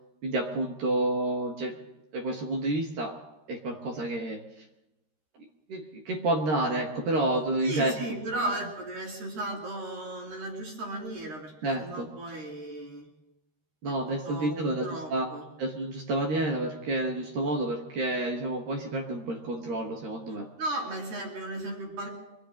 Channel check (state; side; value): late; left; 13 ms